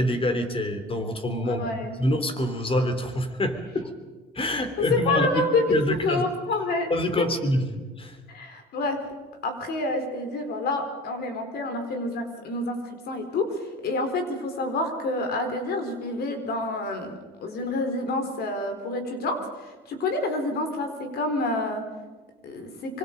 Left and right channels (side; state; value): both; normal; correlation 0.37